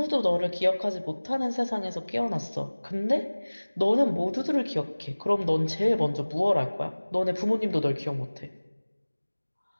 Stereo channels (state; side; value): inverted; both; correlation -1.00